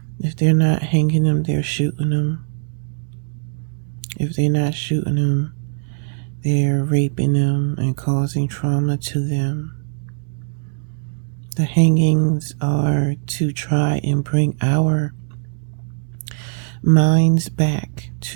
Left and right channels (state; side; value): silent; left; 65 dB below the other